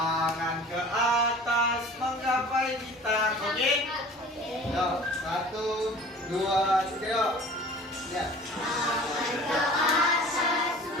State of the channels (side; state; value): both; normal; correlation 0.44